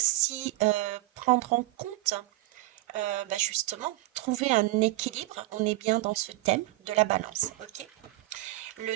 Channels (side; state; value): left; quieter; 17.9 dB